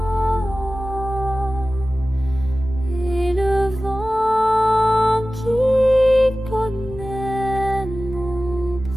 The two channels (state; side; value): normal; both; correlation 0.96